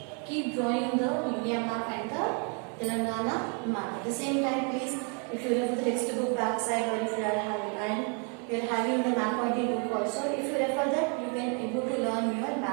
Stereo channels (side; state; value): left; quieter; 38.3 dB